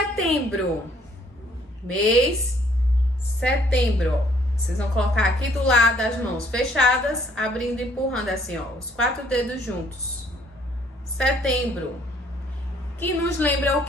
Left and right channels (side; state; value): both; normal; correlation 0.63